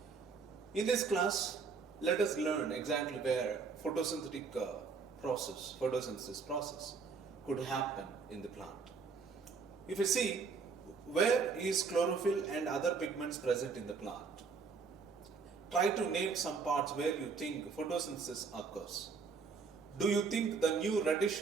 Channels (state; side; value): quieter; left; 5.1 dB